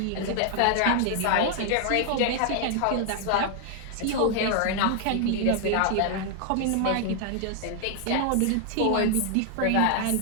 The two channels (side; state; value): both; different; correlation 0.00